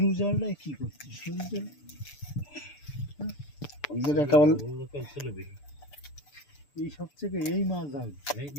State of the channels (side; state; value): right; late; 6.8 ms